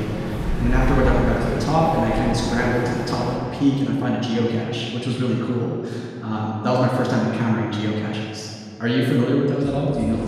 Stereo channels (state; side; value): identical; both; correlation 1.00